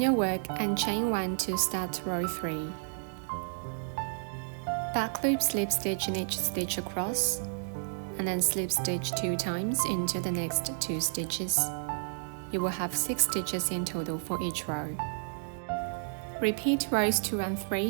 work and chain 1 to start row 3. Back loop slip stitch in each stitch across, and then slip stitch 2 times into the next 2 stitches. You will have 6 stitches in total for each row. Repeat rows 2 and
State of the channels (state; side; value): silent; left; digital silence